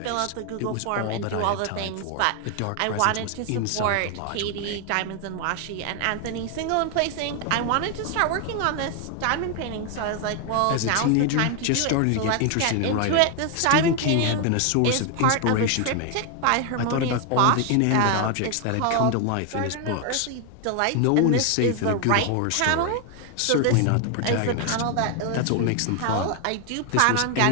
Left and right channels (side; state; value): both; different; correlation 0.00